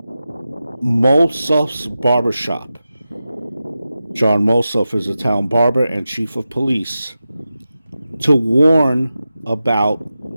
Molsoff's barbershop. John Molsoff is a town barber and chief of police, to warn about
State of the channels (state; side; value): inverted; both; correlation -0.92